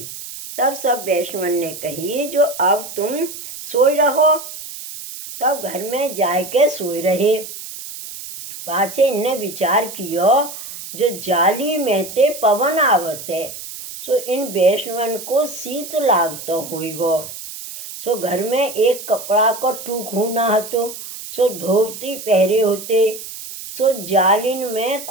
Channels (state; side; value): noise; right; hiss, 11 dB below the sound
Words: तब सब वैष्णवन ने कही, जो अब तुम सोई रहो। तब घर में जाके सोए रहे। पाछे इनने विचार कियो जो जाली में ते पवन आवत है, सो इन वैष्णवन को शीत लागतो होइगो। सो घर में एक कपड़ा को टूक होना हतो, सो धोती पहरे होते, सो जालिन में